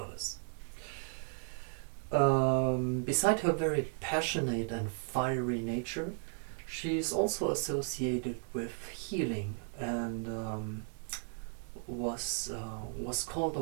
Beside her very passionate and fiery nature, she is also associated with healing, and was called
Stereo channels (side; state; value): left; silent; 54 dB below the other